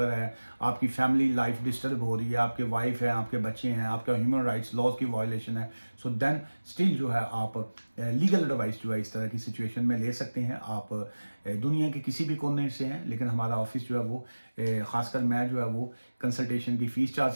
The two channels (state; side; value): inverted; both; correlation -1.00